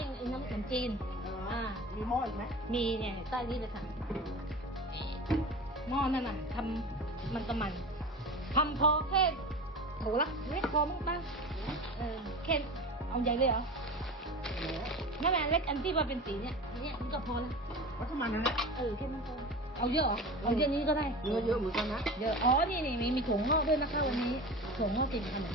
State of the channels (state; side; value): normal; both; correlation 0.32